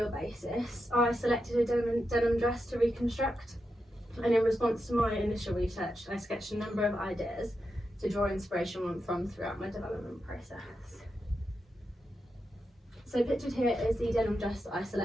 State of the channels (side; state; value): both; normal; correlation 0.87